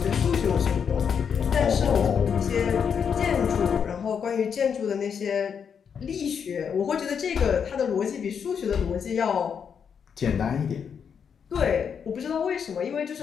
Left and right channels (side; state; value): right; quieter; 7.1 dB